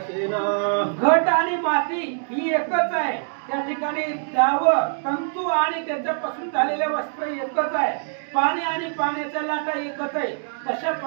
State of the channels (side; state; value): left; silent; digital silence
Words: ना घट आणि माती ही एकच आहे त्या ठिकाणी दाव तंतू आणि त्याच्यापासून झालेले वस्त्र एकच आहे, पाणी आणि पाण्याच्या लाटा एकच आहे. तशा